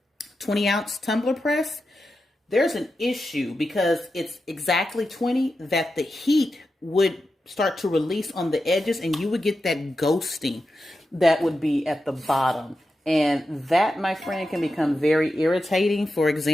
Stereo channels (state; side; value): normal; both; correlation 0.90